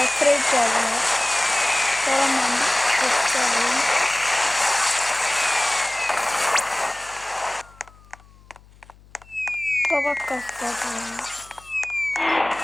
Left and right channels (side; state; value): left; noise; hum, 26 dB below the sound